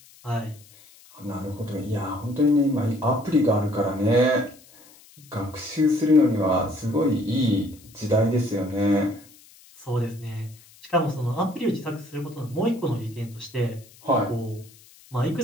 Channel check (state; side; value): noise; left; hiss, 25 dB below the sound